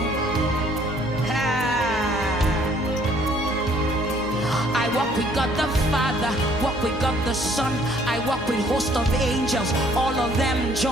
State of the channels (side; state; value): both; normal; correlation 0.61